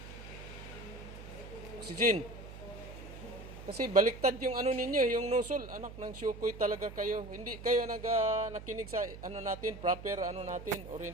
Oxygen. Kasi baliktad yung ano ninyo, yung nozzle. Anak ng syukoy talaga kayo. Hindi kayo nakinig sa ano natin, proper ano natin,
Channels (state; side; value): noise; right; hum, 13 dB below the sound